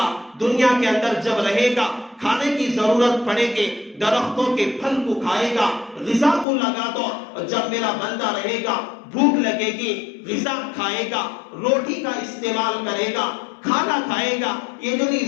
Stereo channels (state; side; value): drops out; right; at 6.5 s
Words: دنیا کے اندر جب رہے گا کھانے کی ضرورت پڑے گی, درختوں کے پھل کو کھائے گا, غذا کو لگا دو, جب میرا بندہ رہے گا بھوک لگے گی غذا کھائے گا, روٹی کا استعمال کرے گا, کھانا کھائے گا. یہ جو